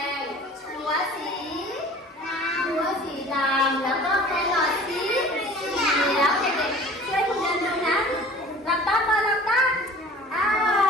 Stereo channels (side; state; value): both; normal; correlation 0.45